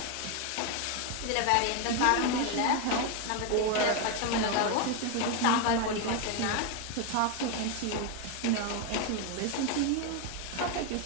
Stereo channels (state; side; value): different; both; correlation 0.01